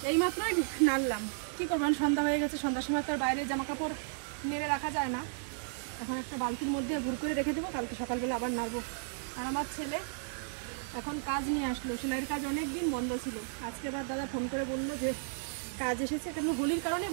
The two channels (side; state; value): left; silent; digital silence